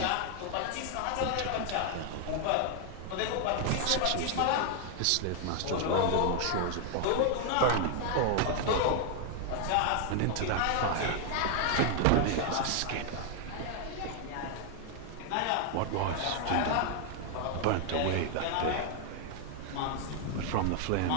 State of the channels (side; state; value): both; different; correlation 0.00